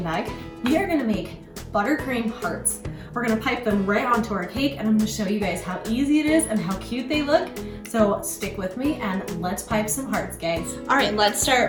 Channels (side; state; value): both; identical; correlation 1.00